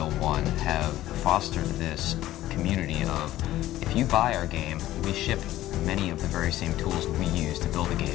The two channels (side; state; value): right; quieter; 14.7 dB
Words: 1, have fostered this community of, if you buy our game, we ship many of the very same tools we use to build the